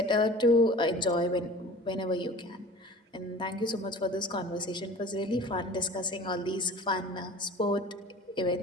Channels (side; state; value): both; normal; correlation 0.42